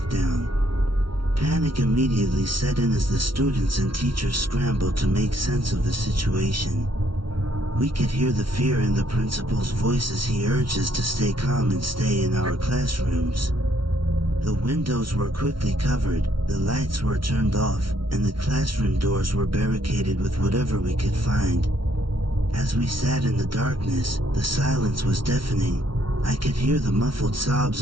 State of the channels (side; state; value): left; late; 0.73 ms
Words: Panic immediately set in as the students and teachers scrambled to make sense of the situation. We could hear the fear in the principal's voice as he urged us to stay calm and stay in our classrooms. The windows were quickly covered, the lights were turned off, and the classroom doors were barricaded with whatever we could find. As we sat in the darkness, the silence was deafening. I could hear the muffled